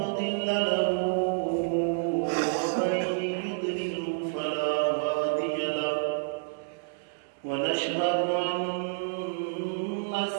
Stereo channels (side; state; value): left; silent; 59 dB below the other